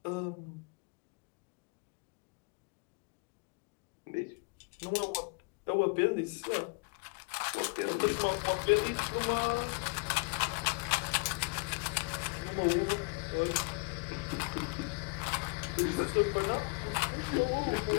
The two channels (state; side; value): quieter; right; 31.8 dB